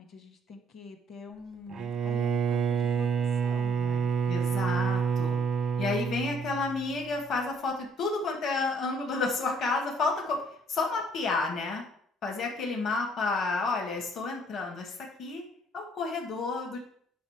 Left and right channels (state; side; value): normal; both; correlation 0.63